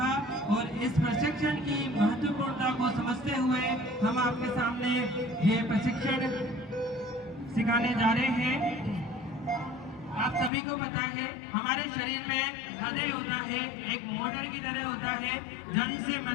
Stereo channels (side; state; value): right; drops out; at 10.5 s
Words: और इस प्रशिक्षण की महत्वपूर्णता को समझते हुए हम आपके सामने ये प्रशिक्षण सिखाने जा रहे हैं। आप सभी को पता है हमारे शरीर में हृदय होता है, एक मोटर की तरह होता है, जन्म से